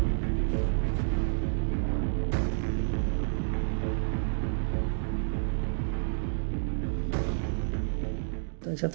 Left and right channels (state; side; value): silent; left; digital silence